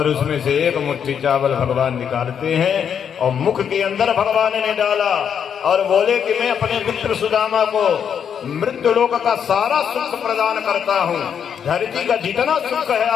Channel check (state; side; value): quieter; right; 7.9 dB